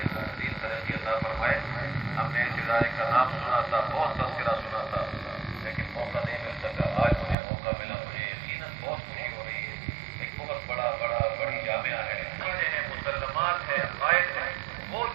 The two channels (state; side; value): drops out; left; at 7.4 s